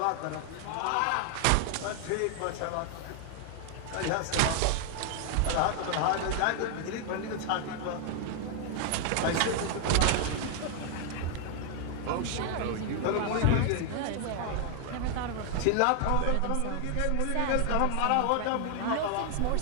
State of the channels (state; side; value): different; both; correlation 0.00